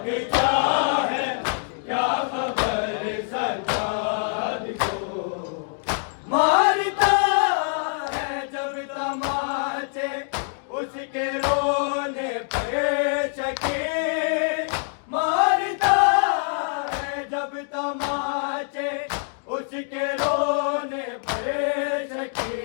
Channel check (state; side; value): silent; right; 62 dB below the other